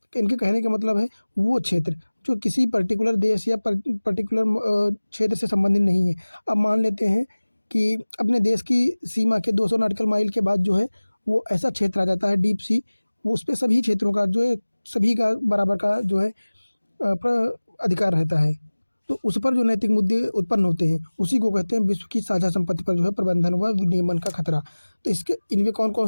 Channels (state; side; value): inverted; both; correlation -1.00